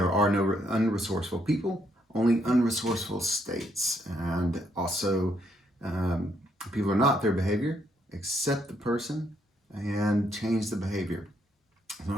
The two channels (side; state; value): both; normal; correlation 0.73